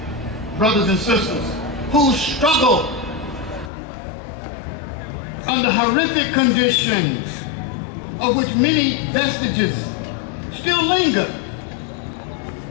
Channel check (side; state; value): right; drops out; at 3.7 s